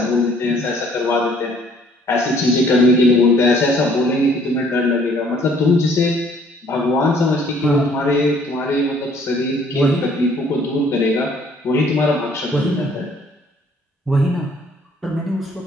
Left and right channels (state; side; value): normal; both; correlation 0.60